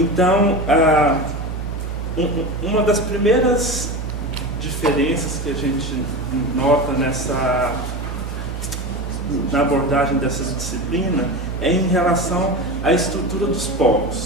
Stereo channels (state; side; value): normal; both; correlation 0.24